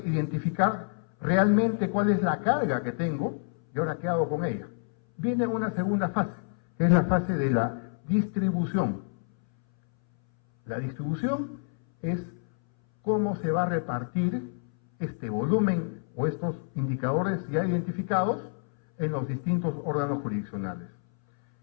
realmente cuál es la carga que tengo y ahora qué hago con ella. Viene una segunda fase, que es la fase de la distribución. La distribución es cómo se va a repartir este volumen o estos indicadores ya identificados en los distintos órganos jurisdiccionales.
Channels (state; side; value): silent; right; 59 dB below the other